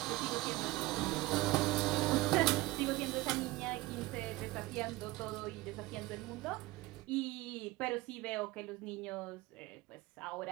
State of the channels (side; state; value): left; quieter; 19.1 dB